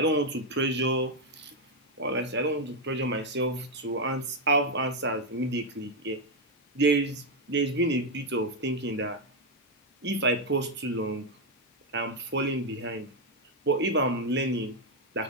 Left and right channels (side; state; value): both; normal; correlation 0.03